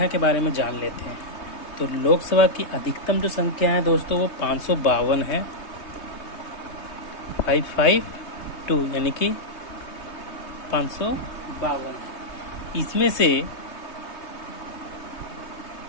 के बारे में जान लेते हैं। तो लोकसभा की अधिकतम जो संख्या है दोस्तों वो 552 है, 552 यानी कि 552 है। इसमें से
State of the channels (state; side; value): late; right; 3.2 ms